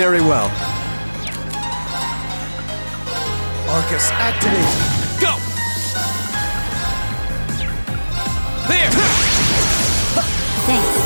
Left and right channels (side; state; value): both; inverted; correlation -1.00